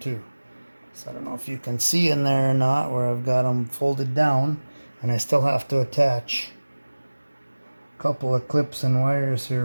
So I don't know if you can see in there or not where I've got them folded down, and I still have to attach a couple of clips and wires here.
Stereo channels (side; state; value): both; inverted; correlation -1.00